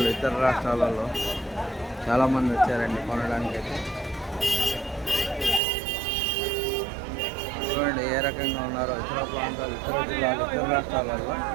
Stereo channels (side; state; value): left; drops out; at 5.6 s